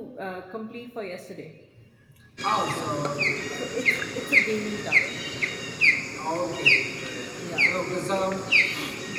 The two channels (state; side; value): identical; both; correlation 1.00